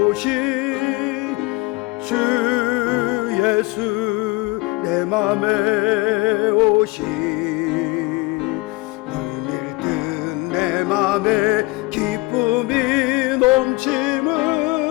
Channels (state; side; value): quieter; right; 23.4 dB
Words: 주 예수 내 맘에 오시 물밀듯 내 맘에 기쁨이 넘치는